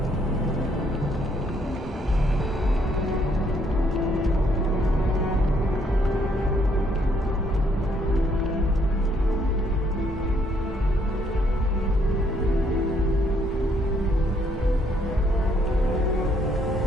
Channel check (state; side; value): normal; both; correlation 0.69